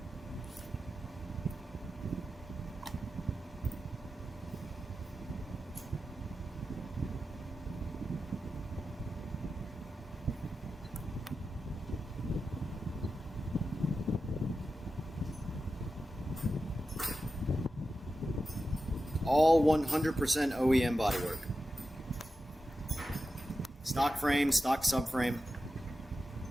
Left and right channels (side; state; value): both; normal; correlation 0.91